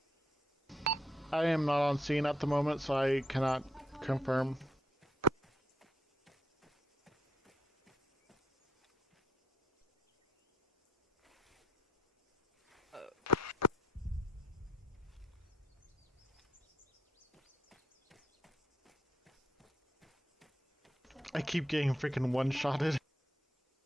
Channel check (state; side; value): normal; both; correlation 0.74